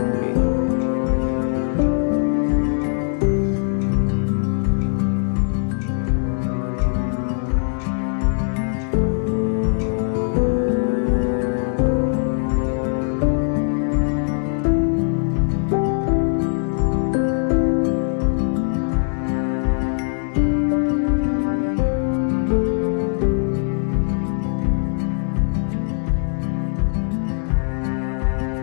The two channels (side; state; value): right; silent; 65 dB below the other